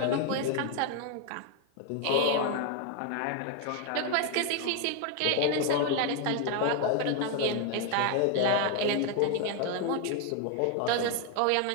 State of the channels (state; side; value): different; both; correlation 0.01